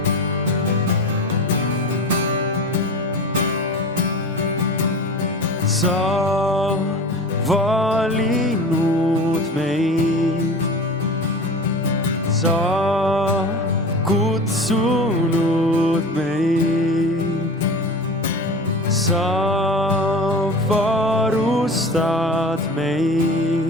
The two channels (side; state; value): both; normal; correlation 0.33